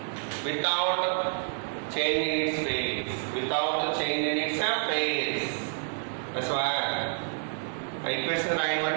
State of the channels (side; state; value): left; silent; 59 dB below the other